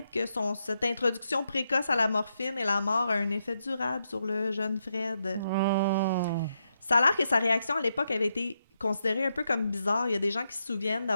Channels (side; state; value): both; inverted; correlation -0.82